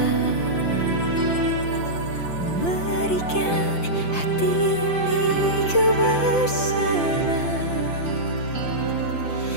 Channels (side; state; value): right; late; 5.8 ms